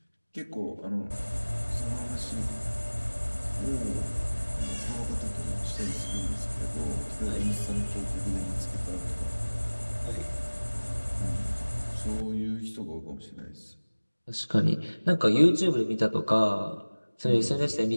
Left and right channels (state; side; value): inverted; both; correlation -1.00